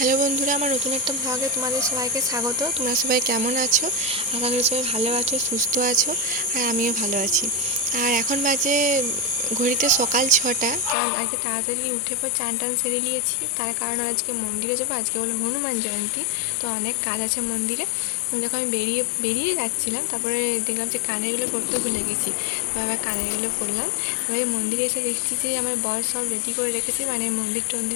Hello বন্ধুরা, আমার নতুন একটা ব্লগে তোমাদের সবাইকে স্বাগত। তোমরা সবাই কেমন আছো? আশা করি সবাই ভালো আছো, সুস্থ আছো, আর আমিও ভালো আছি। আর এখন বাজে ঘড়িতে সকাল 6টা, কারণ আজকে তাড়াতাড়ি উঠে পর চান টান সেরে নিয়েছি। তার কারণ হলো আজকে মন্দিরে যাবো, আজকে হলো হনুমান জয়ন্তী, তো অনেক কাজ আছে মন্দিরে। যখন আমি বেরিয়ে যাচ্ছিলাম, তারপরে দেখলাম যে কানেরগুলো পরতে ভুলে গেছি, তো আবার কানেরগুলো পরলাম। তারপরে মন্দিরে এসে দেখছি যে আমার বর সব রেডি করে রেখেছে, মানে মন্দির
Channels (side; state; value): right; drops out; at 11.0 s